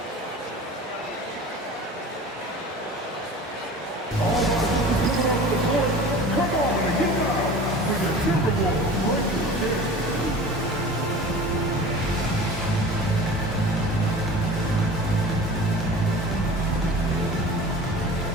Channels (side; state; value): both; normal; correlation 0.39